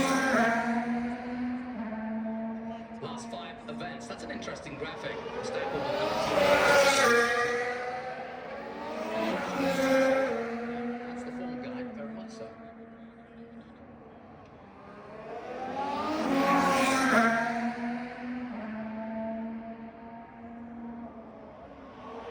Last 5 events. That's an interesting graphic.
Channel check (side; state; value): both; identical; correlation 1.00